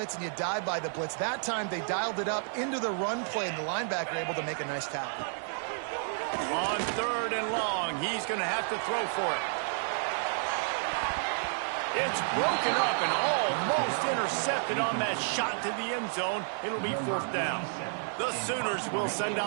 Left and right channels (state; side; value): silent; left; 57 dB below the other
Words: and you die by the blitz. That time, they dialed it up into the run play, and the linebacker able to make a nice tackle. On 3rd and long, he's going to have to throw for it. It's broken up and almost intercepted on that shot to the end zone. It'll be 4th down. The Sooners will send